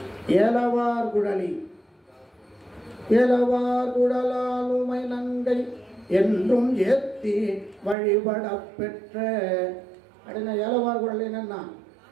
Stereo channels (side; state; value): left; drops out; at 8.0 s